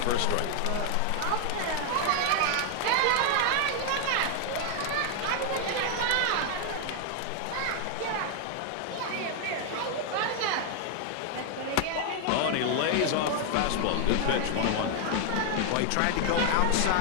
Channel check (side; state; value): both; different; correlation 0.00